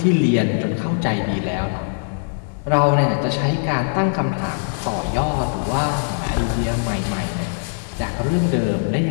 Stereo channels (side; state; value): right; silent; digital silence